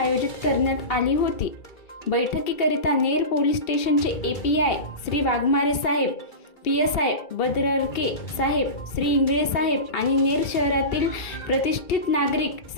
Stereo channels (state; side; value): late; right; 2.7 ms